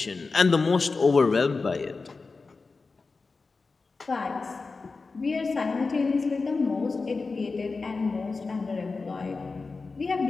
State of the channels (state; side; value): quieter; right; 4.1 dB